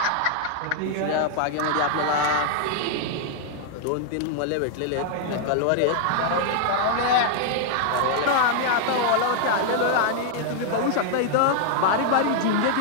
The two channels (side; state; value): both; different; correlation -0.01